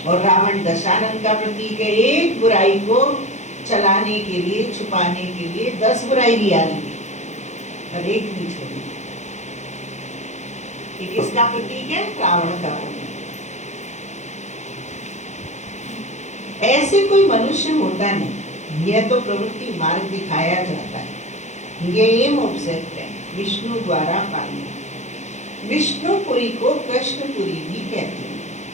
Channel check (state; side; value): late; right; 0.34 ms